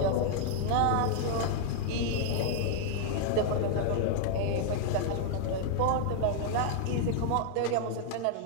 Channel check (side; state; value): both; different; correlation -0.01